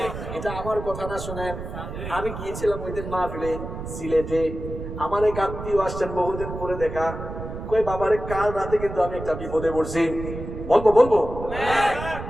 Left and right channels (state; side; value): noise; right; rumble, 8 dB below the sound